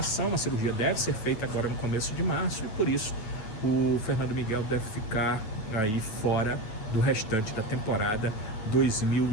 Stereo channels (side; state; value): right; late; 9.1 ms